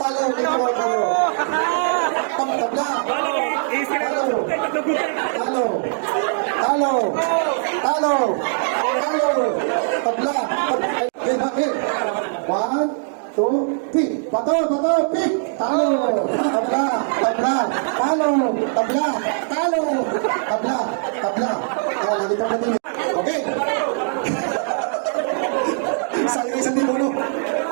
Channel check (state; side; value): silent; left; 65 dB below the other